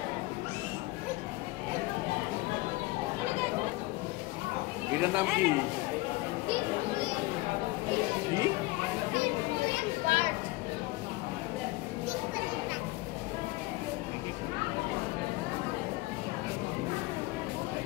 এটার নাম কি? কি?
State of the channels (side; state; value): right; quieter; 20.8 dB